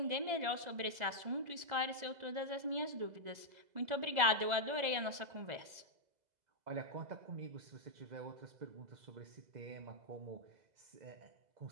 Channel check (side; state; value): left; late; 2.0 ms